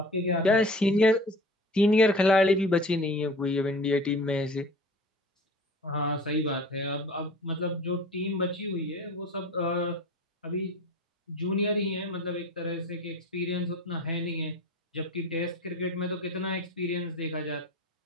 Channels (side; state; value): both; normal; correlation 0.40